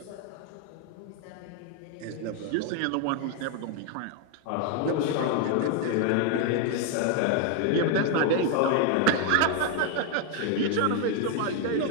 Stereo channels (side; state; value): both; different; correlation 0.01